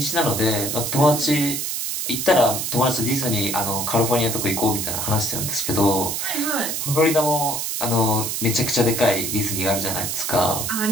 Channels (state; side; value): noise; right; hiss, 2 dB below the sound